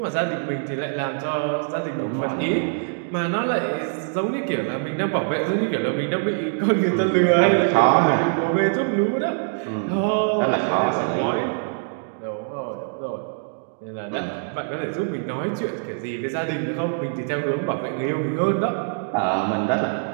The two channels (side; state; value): left; silent; digital silence